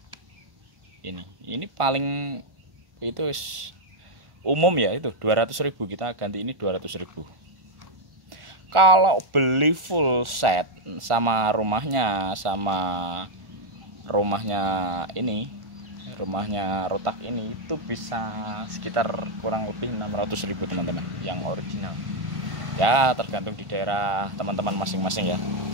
Ini paling itu umum ya, itu 200.000, kita ganti ini 200.000. Kalau beli full set sama rumahnya rumahnya rotak ini itu bisa sekitar kurang lebih 600.000 teman-teman yang original. Ya tergantung di daerah teman-teman masing-masing ya.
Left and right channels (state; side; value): late; left; 1.5 ms